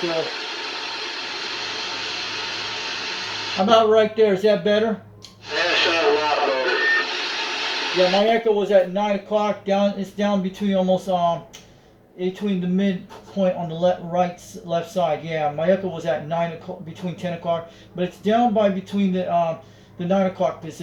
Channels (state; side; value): identical; both; correlation 1.00